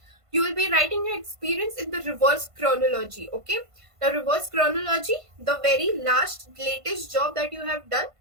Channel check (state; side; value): late; left; 1.5 ms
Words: you will be writing your experience in the reverse chronology. Okay, the reverse chronology, the very last latest job that you have done